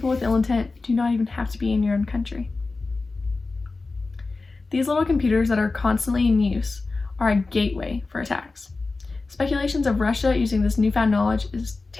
with ill intent do not even have to be in your own country. These little computers that are constantly in use are a gateway for attacks. Speculations of Russia using this newfound knowledge is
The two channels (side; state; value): right; quieter; 3.7 dB